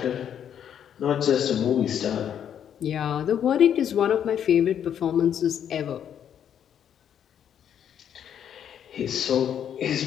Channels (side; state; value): right; quieter; 9.2 dB